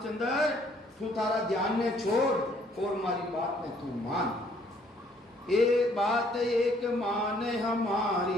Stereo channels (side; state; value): both; normal; correlation 0.63